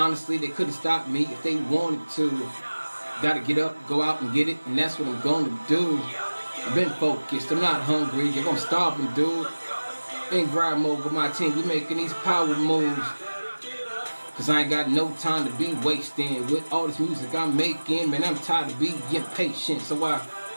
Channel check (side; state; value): both; inverted; correlation -1.00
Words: they couldn't stop me if they wanted to. Gotta get up, go out and get it, and that's what I'm gonna do. I've been focused, I'm not hungry. Yo, I'm starving, dude. In grind mode with my team, we making these power moves. Cause I ain't got no time to be wasting with all this music I'm making. Man, I'm tired of being impatient, so I